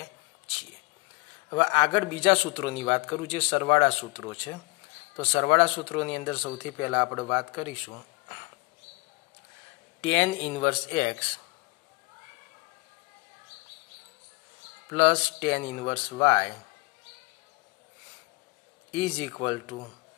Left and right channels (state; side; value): quieter; right; 26.3 dB